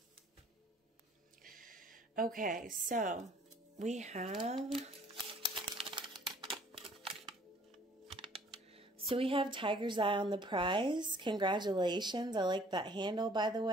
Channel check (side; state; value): both; normal; correlation 0.57